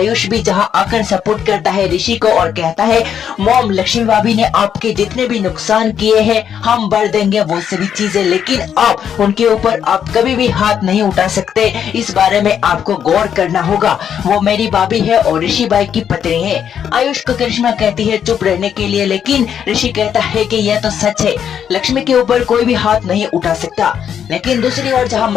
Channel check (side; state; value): right; quieter; 8.6 dB